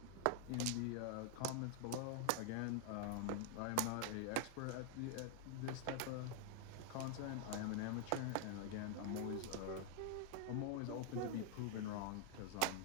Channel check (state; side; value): different; both; correlation 0.00